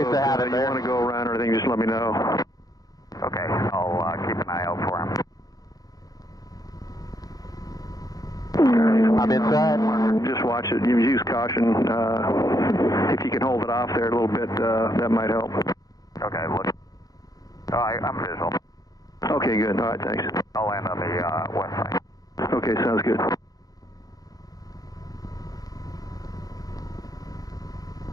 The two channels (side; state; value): right; late; 0.18 ms